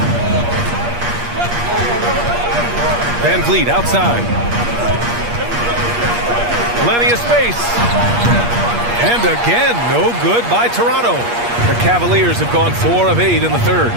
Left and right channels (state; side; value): late; left; 8.5 ms